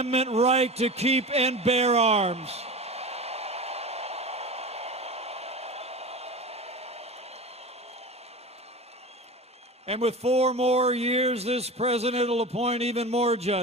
right to keep and bear arms. And with 4 more years, this president will appoint even more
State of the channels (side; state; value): both; normal; correlation 0.30